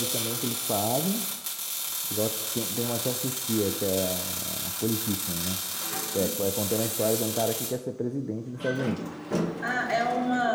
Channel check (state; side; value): identical; both; correlation 1.00